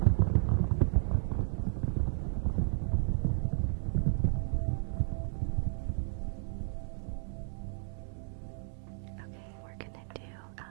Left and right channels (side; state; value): left; silent; 56 dB below the other